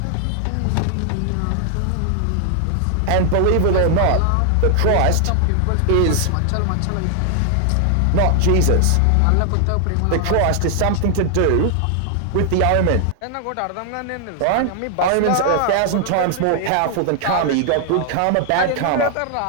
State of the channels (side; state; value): both; different; correlation 0.00